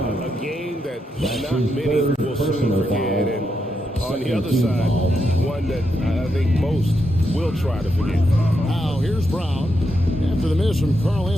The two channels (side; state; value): both; normal; correlation 0.83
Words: A game that not many will soon forget, and on the other side, one that I think most will try to forget. Now, here's Brown. After the miss from Karl